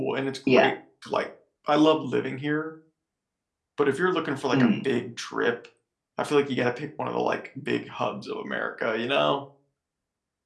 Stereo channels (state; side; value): identical; both; correlation 1.00